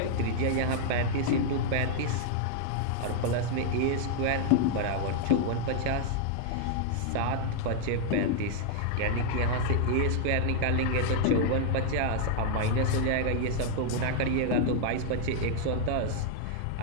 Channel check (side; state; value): both; different; correlation -0.01